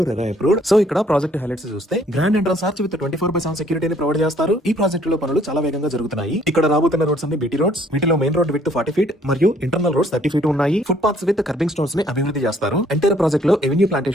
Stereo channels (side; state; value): both; normal; correlation 0.62